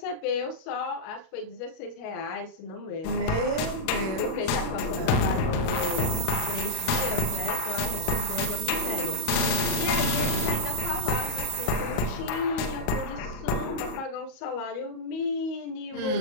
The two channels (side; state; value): right; late; 38 ms